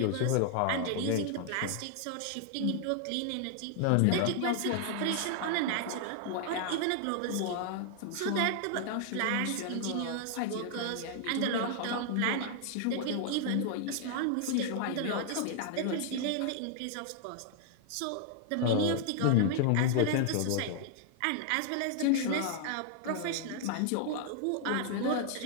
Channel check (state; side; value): different; both; correlation -0.01